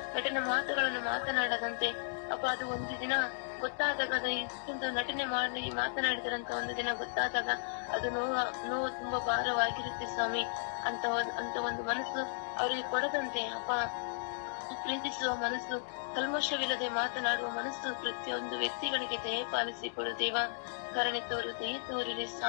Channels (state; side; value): silent; right; digital silence